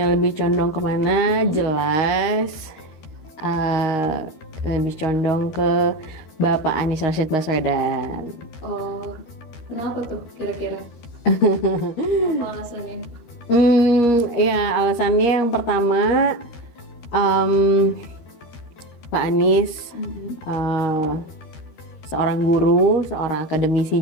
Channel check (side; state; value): right; late; 13 ms